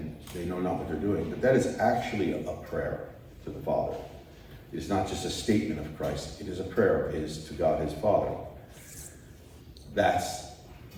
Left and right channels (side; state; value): both; identical; correlation 1.00